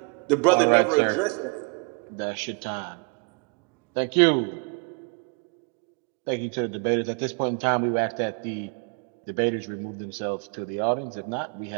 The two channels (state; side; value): quieter; left; 33.2 dB